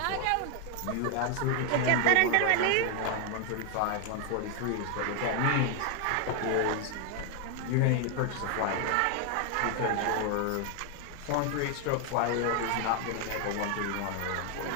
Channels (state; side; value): different; both; correlation 0.00